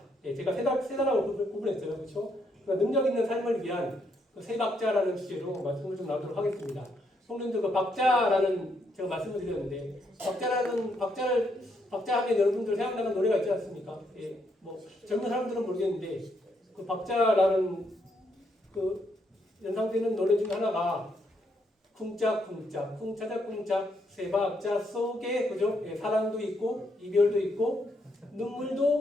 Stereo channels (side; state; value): both; normal; correlation 0.75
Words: 제가 세 단락으로 구분했어요, 그렇죠? 능력 있는 삶을 위한 세 박자라는 주제로 말씀을 좀 나누도록 하겠습니다. 성도님들 그 박자라는 제가 말씀을 드렸는데 박자 하면 여러분들 생각나는 노래가 있지 않습니까? 뭐 젊은 사람들은 모르겠는데 그 박자라는 그 연상되는 노래 중에 하나가 쿵짝쿵짝 쿵차작쿵짝 세 박자 속에 그죠? 사랑도 있고 이별도 있고